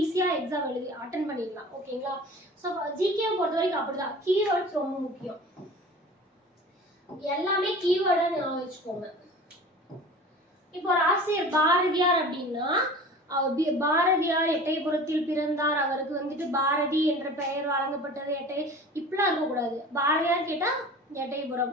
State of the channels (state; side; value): normal; both; correlation 0.40